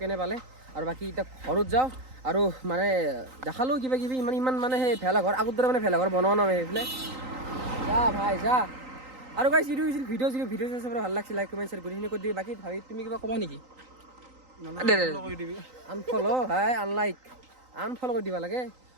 কেনে পালে আৰু বাকি এটা ঘৰত যাও আৰু মানে দেখালো কিবা কিবি ইমান মানে হে ভেলাঘৰ আগৰ দৰে মানে ভেলাঘৰ বনোৱা নাই এইফালে যা ভাই যা আৰু গাইস ভিডিও চাই ভাল লাগছে লাইক কমেন্ট শেয়াৰ কৰি কৰি দিবি বাকি ভাবি তুমি কিবা কবা নেকি আনফলো ভাই আনলাইক আনফলো কৰি দিবা লাগে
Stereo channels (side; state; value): left; late; 3.9 ms